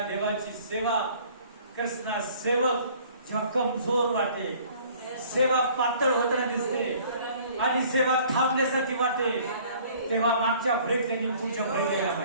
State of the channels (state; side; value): inverted; both; correlation -0.53